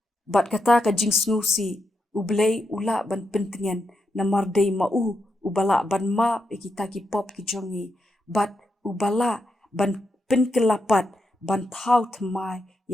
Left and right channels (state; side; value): normal; both; correlation 0.84